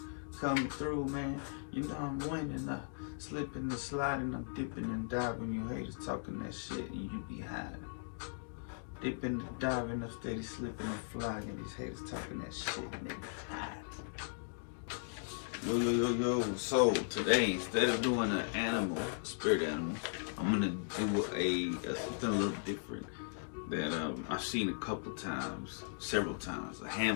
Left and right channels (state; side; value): silent; right; digital silence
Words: coming through, man. You know I'm winning. Slipping and sliding, I'm dipping and diving. You haters talking that shit and you be hiding. Dipping and diving, I'm steady slipping and flying. These haters talking that shit and they be hiding. Yo. So today, instead of doing an animal, spirit animal, I'm gonna do something a little different that I've seen a couple times, several times, a